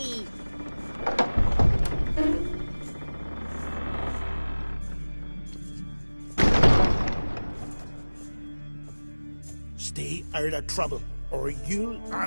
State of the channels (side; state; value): both; inverted; correlation -1.00